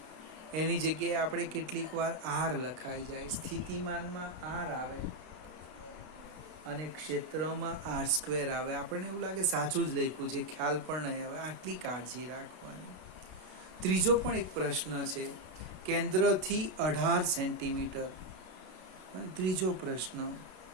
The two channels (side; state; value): left; late; 32 ms